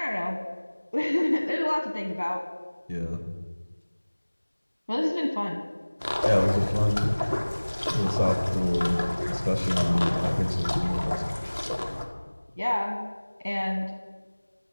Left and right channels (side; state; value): both; inverted; correlation -1.00